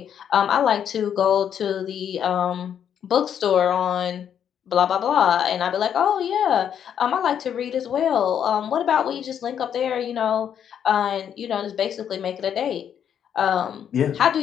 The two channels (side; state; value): right; quieter; 8.8 dB